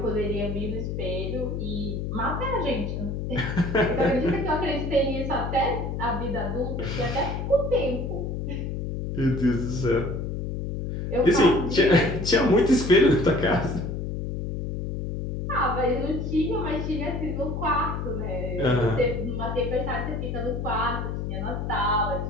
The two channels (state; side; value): noise; left; hum, 3 dB below the sound